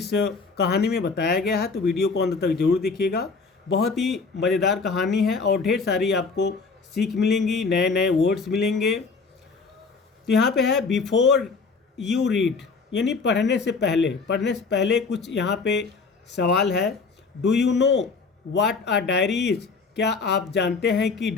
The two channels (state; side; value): quieter; right; 4.6 dB